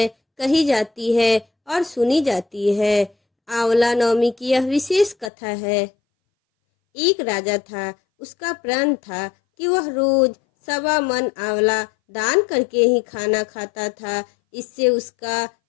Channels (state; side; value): drops out; right; at 5.3 s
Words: कही जाती है और सुनी जाती है। आंवला नवमी की यह विशेष कथा है। एक राजा था, उसका प्रण था कि वह रोज 1.25 मन आंवला दान करके ही खाना खाता था। इससे उसका